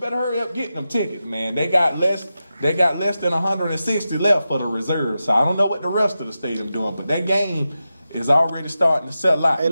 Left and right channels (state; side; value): inverted; both; correlation -0.91